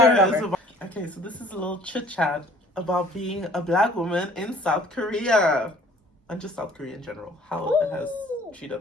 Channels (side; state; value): both; normal; correlation 0.53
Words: is over. about... Okay, so this is a little chit-chat about being a black woman in South Korea. And just South Korea in general. How it has